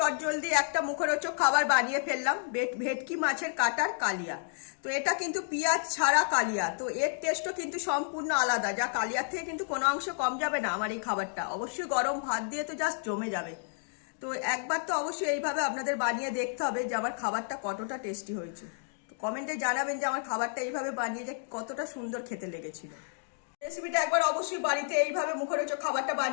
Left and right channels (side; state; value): right; silent; digital silence